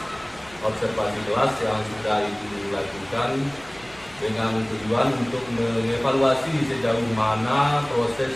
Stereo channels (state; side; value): noise; right; rumble, 25 dB below the sound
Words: observasi kelas yang sudah Ibu lakukan dengan tujuan untuk mengevaluasi sejauh mana proses